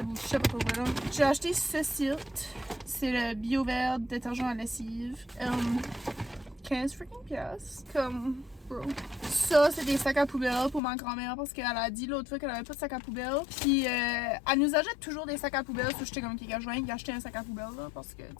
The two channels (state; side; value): drops out; right; at 10.8 s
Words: ou je sais pas quoi. J'ai acheté ceci. C'est le Bio Vert détergent à lessive. 15 freaking piastres. Comme. Bro. Ça, c'est des sacs à poubelle pour ma grand-mère parce qu'elle a dit l'autre fois qu'elle avait pas de sac à poubelle. Puis elle nous achète toujours des sacs à poubelle. So j'étais comme, je viens d'acheter un sac à poubelle là parce que,